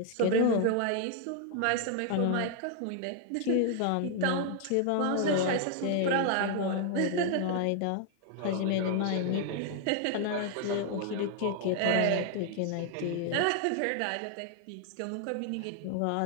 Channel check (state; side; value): different; both; correlation 0.00